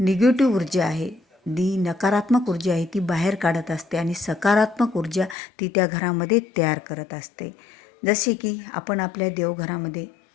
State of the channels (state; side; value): drops out; right; at 5.4 s